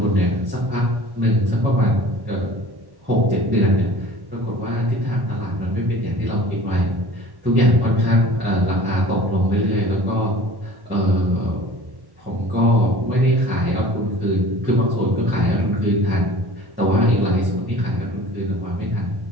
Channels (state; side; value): late; left; 1.1 ms